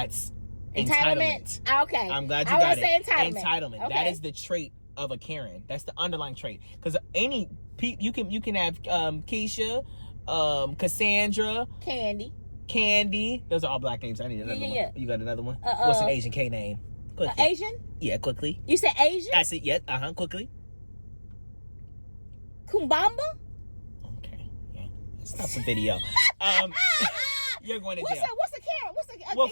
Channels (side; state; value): both; inverted; correlation -1.00